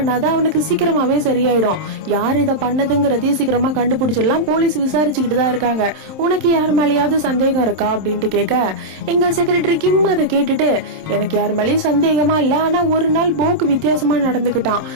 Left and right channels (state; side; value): late; left; 27 ms